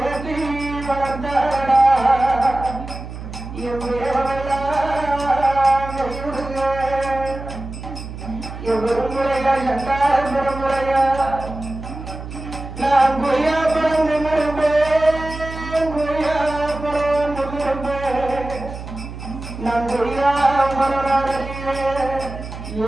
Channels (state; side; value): noise; right; hum, 10 dB below the sound